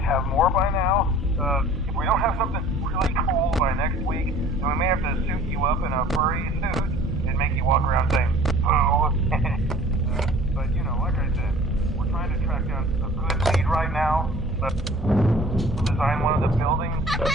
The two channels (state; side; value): normal; both; correlation 0.49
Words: have more by now. If we don't have something really cool by next week, then we may have to suit you up in a furry suit and make you walk around saying, boo. But, you know, like I said, we're trying to track down a good lead right now. Design one of the buildings.